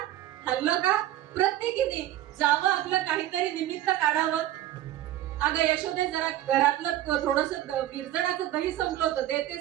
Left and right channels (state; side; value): quieter; left; 13.4 dB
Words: हल्लं का, प्रत्येकीने जावं, आपलं काहीतरी निमित्त काढावं. अगं यशोदे जरा घरातलं थोडस विरजणाचं दही संपलं होतं,